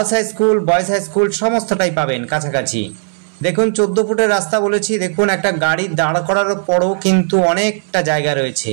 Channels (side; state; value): left; silent; 68 dB below the other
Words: high school, boys high school সমস্তটাই পাবেন কাছাকাছি। দেখুন 14 ফুটের রাস্তা বলেছি। দেখুন একটা গাড়ি দাঁড় করার পরও কিন্তু অনেকটা জায়গা রয়েছে।